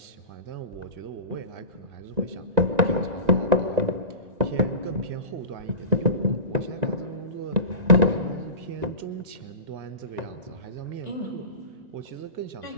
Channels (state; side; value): late; left; 1.9 ms